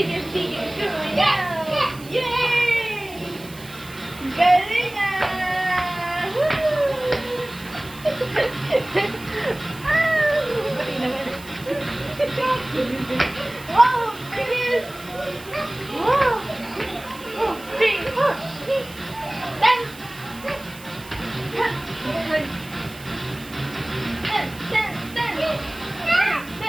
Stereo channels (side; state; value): right; noise; hiss, 19 dB below the sound